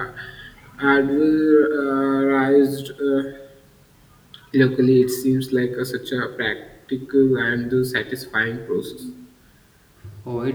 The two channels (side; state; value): both; identical; correlation 1.00